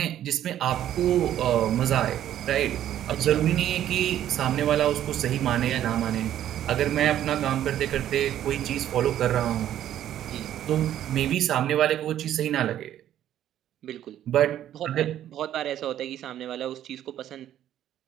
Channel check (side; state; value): left; quieter; 11.5 dB